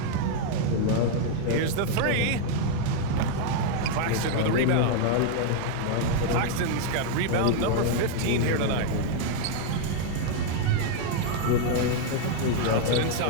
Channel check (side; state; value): both; different; correlation 0.00